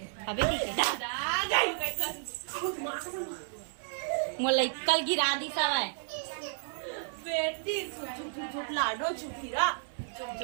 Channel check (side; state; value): left; silent; 56 dB below the other